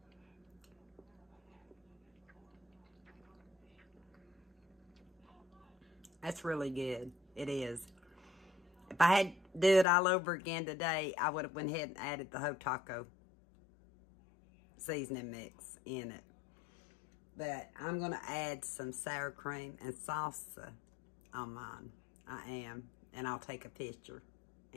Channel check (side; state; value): right; drops out; at 9.9 s